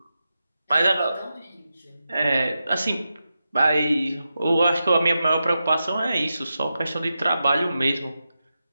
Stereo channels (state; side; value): inverted; both; correlation -0.90